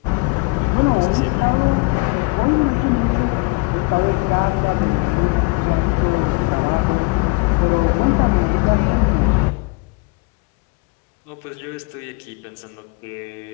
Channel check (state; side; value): quieter; right; 26.7 dB